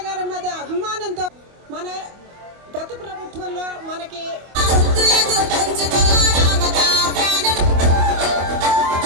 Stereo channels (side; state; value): left; late; 25 ms